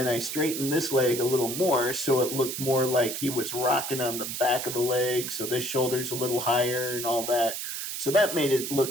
I straightened this leg a little more so it looked more like he was rocking on the back of the leg, so this shoulder's a little higher and all that. So that made it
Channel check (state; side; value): noise; right; hiss, 5 dB below the sound